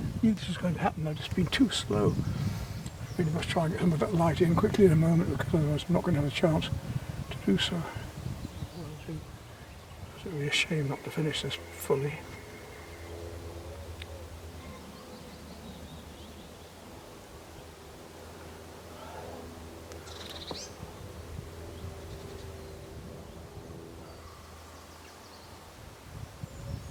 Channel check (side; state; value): both; identical; correlation 1.00